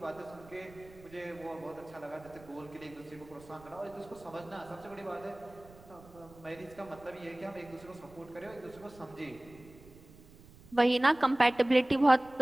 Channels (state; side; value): noise; right; rumble, 22 dB below the sound